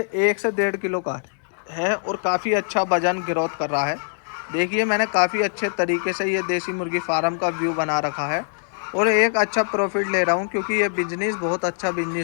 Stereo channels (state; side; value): silent; right; 63 dB below the other